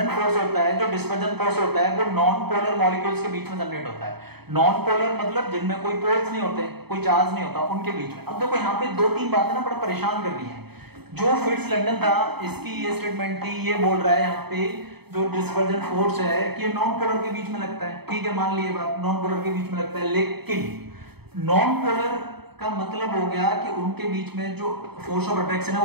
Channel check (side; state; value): left; late; 0.97 ms